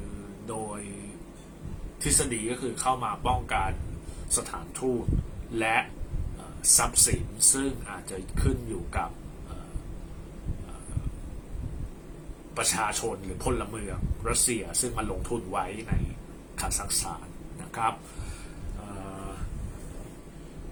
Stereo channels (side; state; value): both; identical; correlation 1.00